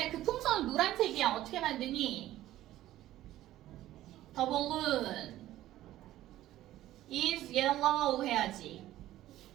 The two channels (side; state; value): left; quieter; 14.4 dB